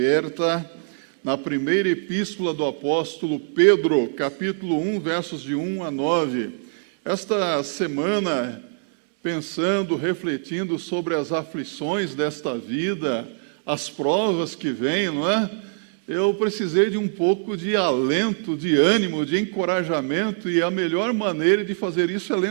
na primeira epístola do apóstolo Pedro, capítulo 1, versos de 1 a 9. Esta semana, pensando, refletindo sobre as aflições desta vida, as provas que vêm, não é? Eu precisei de um pouco de alento, de ânimo, de encorajamento, e a melhor maneira de fazer isso é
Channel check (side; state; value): left; silent; 63 dB below the other